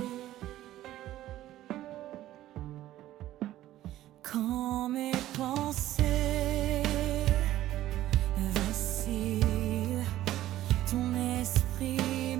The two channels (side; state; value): left; quieter; 14.1 dB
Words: Quand mes pensées vacillent, ton esprit